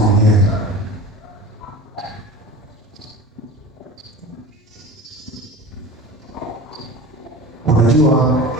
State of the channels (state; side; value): normal; both; correlation 0.36